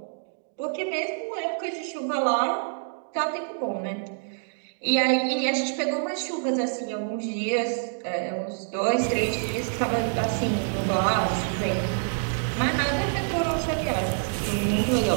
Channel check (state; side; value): silent; left; digital silence